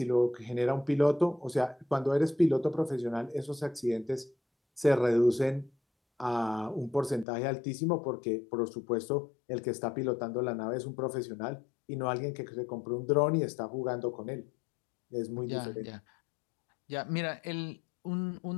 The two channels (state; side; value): drops out; right; at 7.2 s